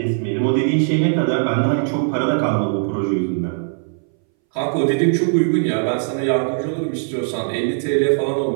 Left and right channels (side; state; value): left; silent; 63 dB below the other